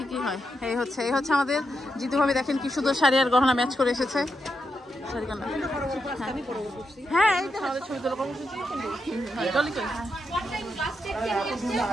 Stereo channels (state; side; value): normal; both; correlation 0.84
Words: কি হয়। এই হচ্ছে আমাদের জিতু ভাবি। দেখেন কি সুন্দর শাড়ি আর গহনা ম্যাচ করে এসেছে। হ্যাঁ, এই তো আমাদের ছবি তোলা কর্মসূচি।